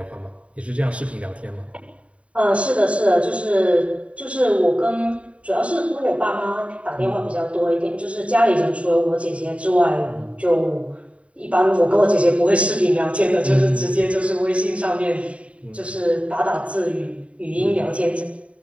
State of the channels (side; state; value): left; late; 0.064 ms